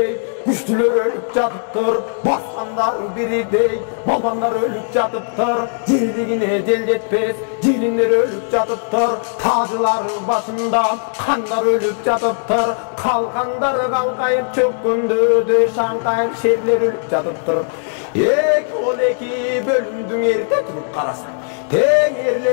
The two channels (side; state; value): right; silent; digital silence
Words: güçlüler ölüp jatıptır, baskanlar biridey, balbanlar ölüp jatıptır, jeldigine jel jetpes, jelinler ölüp jatıptır, tacılar başında kanlar ölüp jatıptır, kalkanlar kalkayıp çökkündü, şankayıp şerler ölüp jatıptır. Eki ol eki bölümdüň erite turup karasan, teң